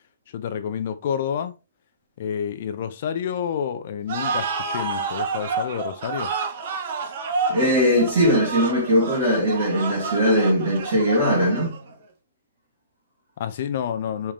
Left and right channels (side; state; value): both; inverted; correlation -0.44